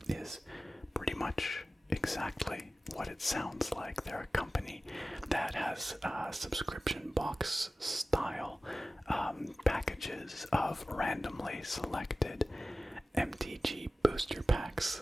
is pretty much exactly what it sounds like. They're a company that has subscription box style packages of randomly selected MTG booster packs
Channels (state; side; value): normal; both; correlation 0.96